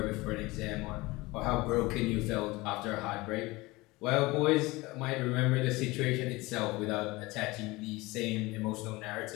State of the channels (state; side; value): quieter; right; 21.8 dB